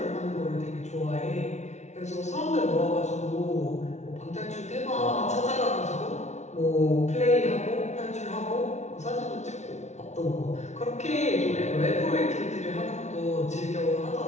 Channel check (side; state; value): right; late; 0.32 ms